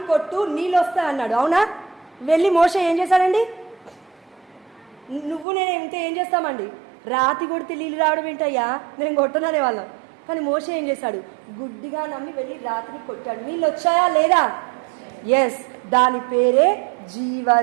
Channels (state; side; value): drops out; left; at 5.5 s